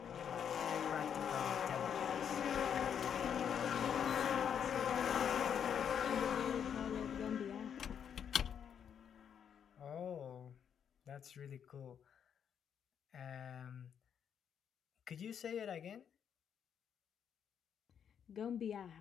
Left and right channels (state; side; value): quieter; right; 8.1 dB